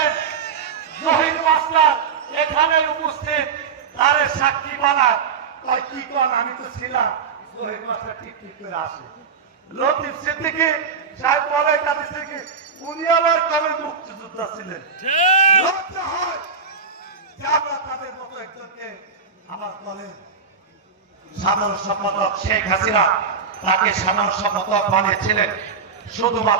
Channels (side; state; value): left; quieter; 5.7 dB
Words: জহির মাস্টার এখানে উপস্থিত তারে সাক্ষী বানায় কয় কি কোন আমি তো ছিলাম জহির মাস্টার ঠিক করে আসে লতিফ সিদ্দিকী সাহেব বলে কাদের থেকে উনি আবার কবে মুক্তিযোদ্ধা ছিলেন লজ্জা হয় যে আমরা তাদের মতো একজনকে আমার দলের সাধারণ সম্পাদক শেখ হাসিনা তাকে সাধারণ সম্পাদক বানিয়েছিলেন